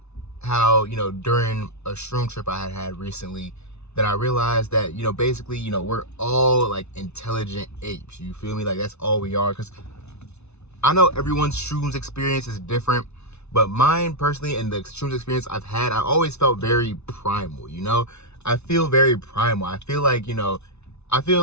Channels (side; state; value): right; late; 0.81 ms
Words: how, during a shroom trip I had recently, that I realized that, basically, we're all like intelligent apes. You feel me? Like, that's all we are. Because I know everyone's shrooms experience is different, but mine personally and the shrooms experience I've had, I always felt very primal, I feel very primal. I feel like,